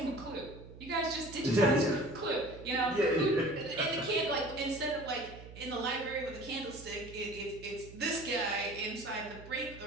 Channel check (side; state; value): right; noise; hum, 16 dB below the sound